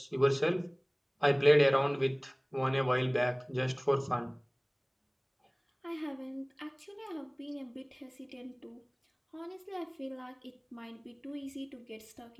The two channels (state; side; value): identical; both; correlation 1.00